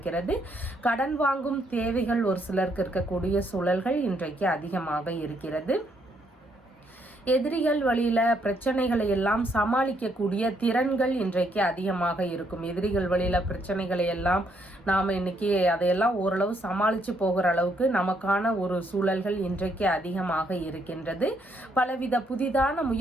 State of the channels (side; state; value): both; normal; correlation 0.72